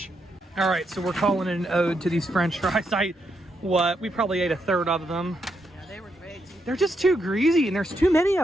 All right, so we're calling it an ode to these French fries. We probably ate a third of them. They're just too greasy, and there's too many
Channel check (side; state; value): both; normal; correlation 0.80